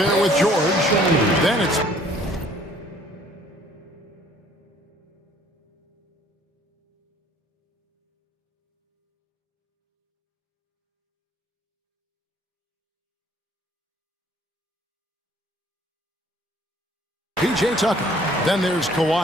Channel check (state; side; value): normal; both; correlation 0.57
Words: with George. Then it's P.J. Tucker. Then there's